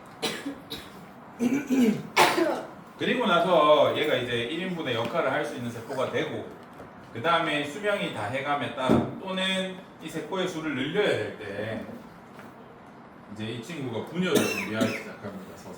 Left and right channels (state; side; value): identical; both; correlation 1.00